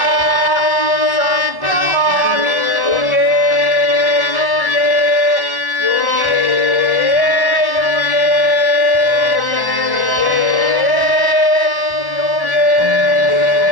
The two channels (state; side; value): late; right; 1.1 ms